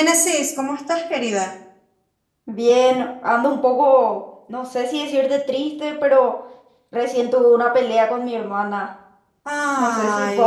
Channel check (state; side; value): identical; both; correlation 1.00